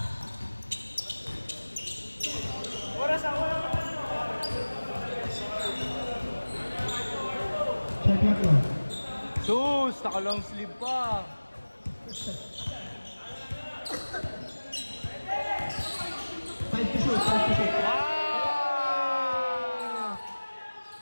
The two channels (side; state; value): both; inverted; correlation -1.00